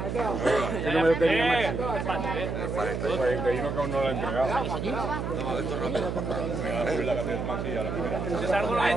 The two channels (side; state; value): right; noise; hum, 3 dB below the sound